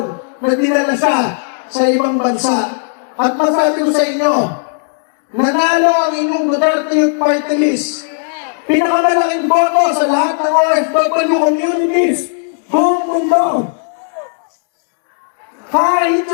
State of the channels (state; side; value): silent; right; 70 dB below the other